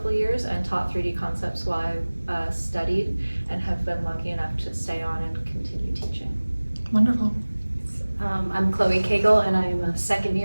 of years and taught 3D concepts while I studied, and have been lucky enough to stay on and continue teaching. Wonderful. I'm Koegel, and I'm a second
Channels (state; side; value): inverted; both; correlation -1.00